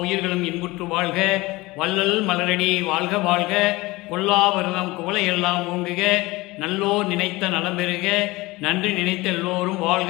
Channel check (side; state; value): right; quieter; 21.1 dB